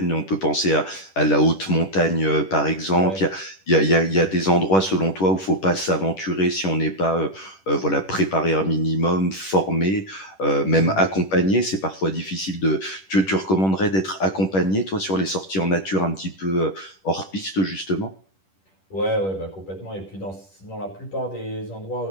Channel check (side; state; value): right; late; 10 ms